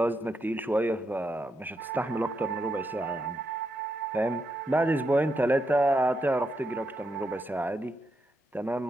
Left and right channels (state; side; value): normal; both; correlation 0.82